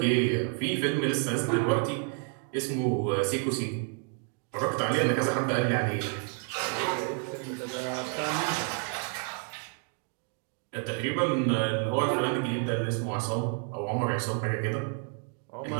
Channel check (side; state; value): left; quieter; 35.3 dB